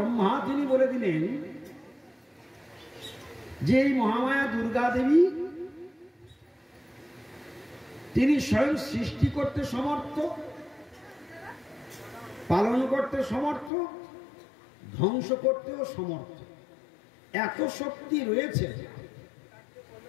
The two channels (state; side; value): drops out; right; at 13.7 s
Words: তিনি বলে দিলেন যে এই মহামায়া দুর্গা দেবী তিনি স্বয়ং সৃষ্টি করতে সমর্থ, পালন করতে সমর্থ, ধ্বংস করতেও সমর্থ। এত শক্তি রয়েছে,